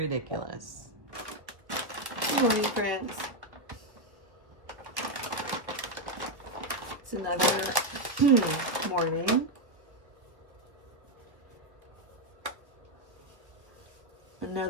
Good morning, friends. It's another morning.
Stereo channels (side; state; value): left; late; 1.5 ms